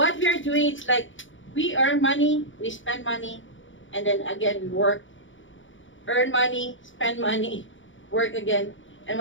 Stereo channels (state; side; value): late; right; 0.56 ms